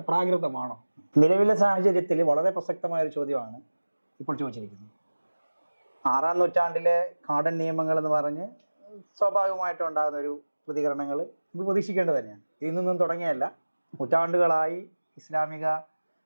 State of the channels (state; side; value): inverted; both; correlation -1.00